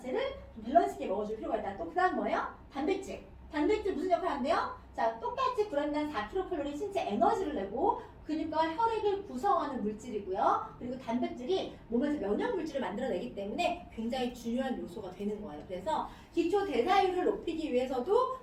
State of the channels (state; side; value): identical; both; correlation 1.00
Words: 밸런스 있게 먹어줄 필요가 있다. 또 그 다음 뭐예요? 단백질. 단백질 무슨 역할 한대요? 자, 똑같이 g당 4kcal 신체 에너지를 내고 그러니까 혈액을 구성하는 물질이고요. 그리고 단백질이 몸에서 면역 물질을 만들어내기 때문에 굉장히 중요한 요소가 되는 거예요. 그래서 기초 대사율을 높이기 위해서도